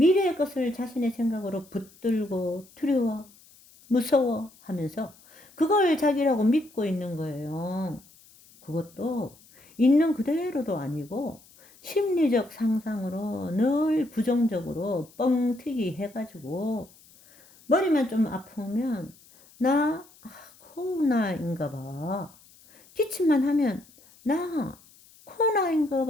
것을 자신의 생각으로 붙들고 두려워, 무서워 하면서 그걸 자기라고 믿고 있는 거예요. 그것도 있는 그대로도 아니고 심리적 상상으로 늘 부정적으로 뻥튀기 해가지고 머리만 좀 아프면 나 코로나인가 봐. 기침만 하면 나 코로나인가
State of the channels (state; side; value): noise; left; hiss, 26 dB below the sound